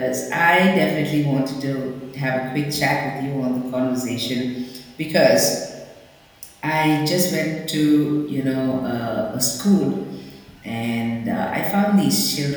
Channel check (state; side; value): identical; both; correlation 1.00